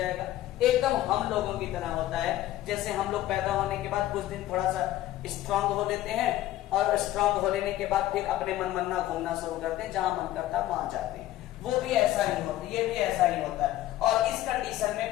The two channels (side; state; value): right; quieter; 14.5 dB